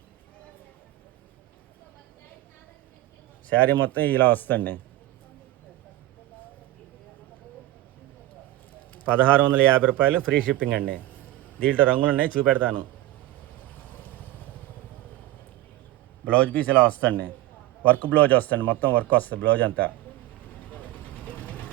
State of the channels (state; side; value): quieter; left; 15.9 dB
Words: శారీ మొత్తం ఇలా వస్తుంది. 1650 రూపాయలు, ఫ్రీ షిప్పింగ్ అండి. దీంట్లో రంగులు ఉన్నాయి, చూపెడతాను. బ్లౌజ్ పీస్ ఇలా వస్తుంది, వర్క్ బ్లౌజ్ వస్తుంది, మొత్తం వర్క్ వస్తుంది బ్లౌజ్ అంతా.